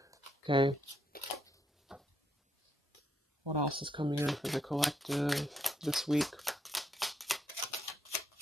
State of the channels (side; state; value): both; normal; correlation 0.76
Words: Okay. What else is coming in for the collective this week?